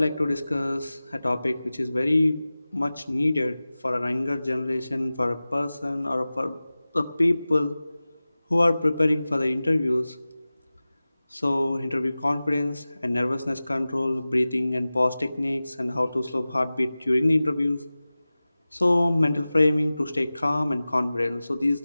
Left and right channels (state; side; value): inverted; both; correlation -0.97